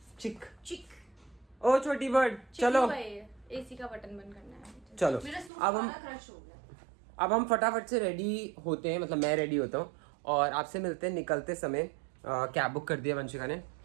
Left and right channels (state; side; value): drops out; left; at 5.5 s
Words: चिक। चिक। ओ छोटी बर्ड, चलो एसी का बटन बंद करना है। चलो। मेरा सूट अब हम सारा क्रश हो गया। अब हम फटाफट से रेडी होते हैं, मतलब मैं रेडी होता हूँ और आपसे मिलते हैं निकलते समय। कैब बुक कर दिया वंशिका ने,